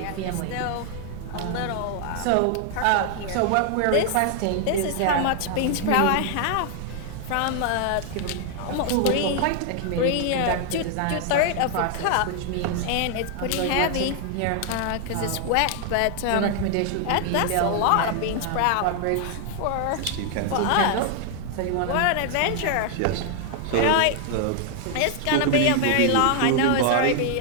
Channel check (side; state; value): both; different; correlation 0.00